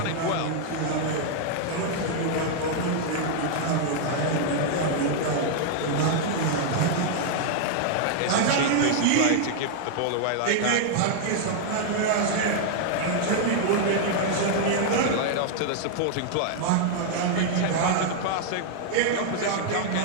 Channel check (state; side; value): different; both; correlation -0.01